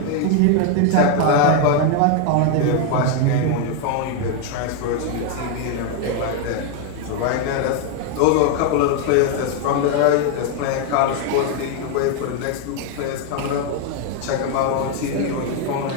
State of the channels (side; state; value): both; different; correlation 0.01